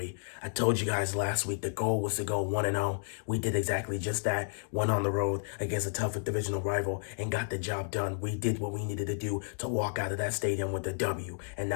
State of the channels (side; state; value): right; silent; digital silence